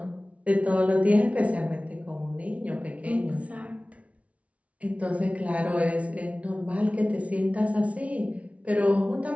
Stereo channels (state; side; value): late; left; 0.065 ms